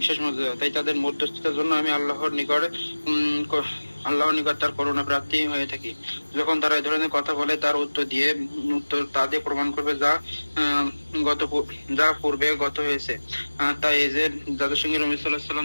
বিশেষ মর্যাদা। তাই তাদের মধ্যস্থতার জন্য আমি আল্লাহর নিকট তার করুণা প্রাপ্তি হয়ে থাকি। যখন তারা এই ধরনের কথা বলে, তার উত্তর তা দিয়ে প্রমাণ করবে যা পূর্বে গত হয়েছে। তাই এই যে যাদের সঙ্গে নবী সাল্লাল্লাহু আলাইহি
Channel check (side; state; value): both; inverted; correlation -1.00